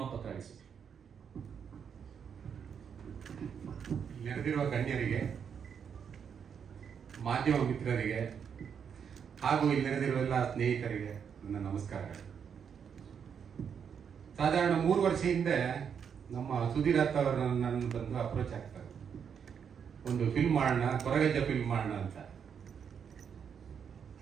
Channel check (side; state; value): left; quieter; 7.3 dB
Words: ನೆರೆದಿರುವ ಗಣ್ಯರಿಗೆ, ಮಾಧ್ಯಮ ಮಿತ್ರರಿಗೆ ಹಾಗೂ ಇಲ್ಲಿ ನೆರೆದಿರುವ ಎಲ್ಲ ಸ್ನೇಹಿತರಿಗೆ ನನ್ನ ನಮಸ್ಕಾರಗಳು. ಸಾಧಾರಣ 3 ವರ್ಷ ಹಿಂದೆ ನಮ್ಮ ಸುಧೀರ್ ಅತ್ತ ಅವರು ನನ್ನ ಬಂದು ಅಪ್ರೋಚ್ ಆಗ್ತಾರೆ, ಒಂದು ಫಿಲ್ಮ್ ಮಾಡೋಣ, ಕೊರಗಜ್ಜ ಫಿಲ್ಮ್ ಮಾಡೋಣ ಅಂತ.